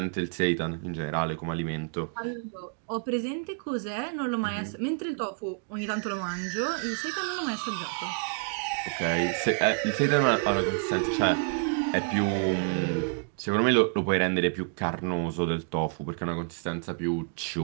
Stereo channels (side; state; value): left; silent; 59 dB below the other